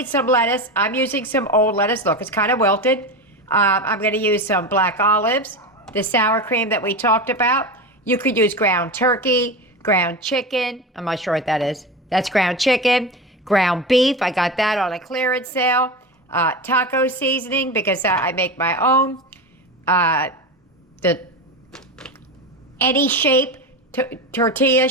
some lettuce. I'm using some old lettuce. Look, it's kind of wilted. I'm going to use some black olives, the sour cream that we talked about. You could use ground turkey, ground chicken. I'm not sure what that is. That's ground chicken, ground beef. I got that on a clearance sale. Taco seasoning because I make my own. Any shape tortilla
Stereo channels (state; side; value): normal; both; correlation 0.23